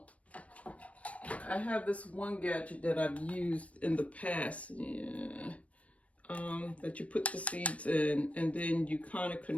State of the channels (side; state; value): right; late; 0.065 ms